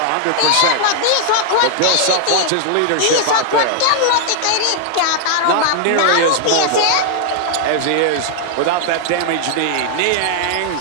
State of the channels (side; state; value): both; different; correlation 0.00